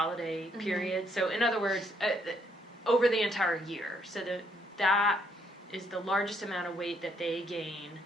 period. So in other words, over the entire year. So that is the largest amount of weight that they gain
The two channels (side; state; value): both; normal; correlation 0.71